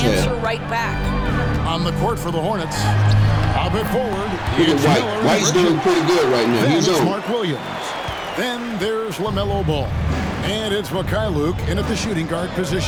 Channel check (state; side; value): identical; both; correlation 1.00